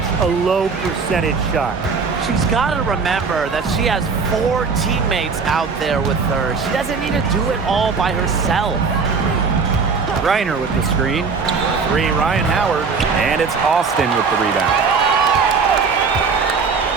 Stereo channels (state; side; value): quieter; left; 5.1 dB